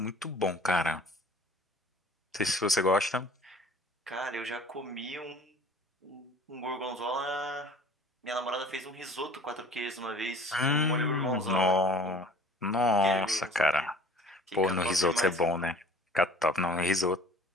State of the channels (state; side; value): normal; both; correlation 0.48